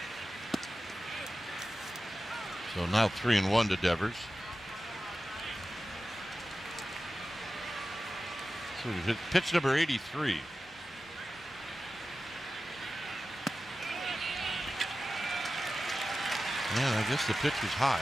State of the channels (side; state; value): both; normal; correlation 0.94